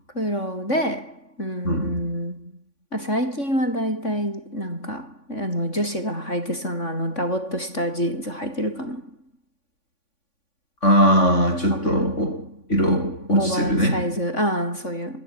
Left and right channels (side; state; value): right; late; 3.5 ms